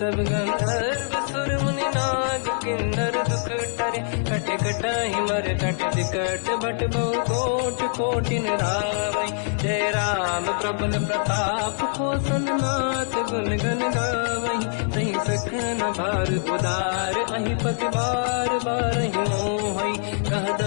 गंधर्व सुर मुनि नाग किन्नर दुख टरे कट कटाहि मर कट विकट भट बहु कोट कोटिन रावै जय राम प्रबल प्रताप कौशल नाथ गुण गन गावै तहि सखन भार उदार अहि पति बार बारहि मोहै कह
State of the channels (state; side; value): silent; right; digital silence